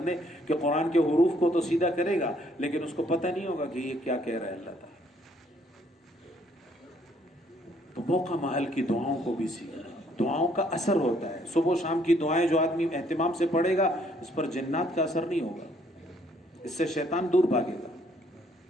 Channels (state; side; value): normal; both; correlation 0.66